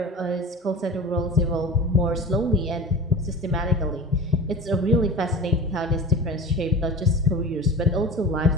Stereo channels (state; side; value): normal; both; correlation 0.33